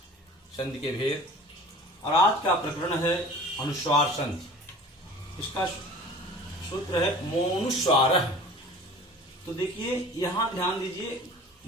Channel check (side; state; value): both; normal; correlation 0.43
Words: संधि के भेद। और आज का प्रकरण है अनुस्वार संधि। इसका सूत्र है मोनुस्वारः। तो देखिए यहाँ ध्यान दीजिए,